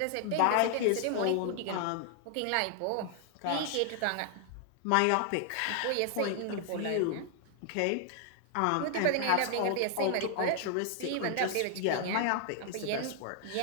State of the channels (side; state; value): both; different; correlation 0.00